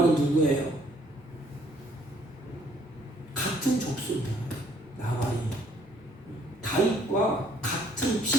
누구예요? 같은 족속입니다. 나발이 다윗과 같은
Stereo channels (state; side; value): normal; both; correlation 0.63